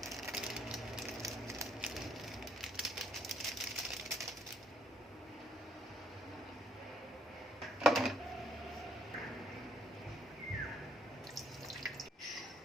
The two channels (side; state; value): both; normal; correlation 0.67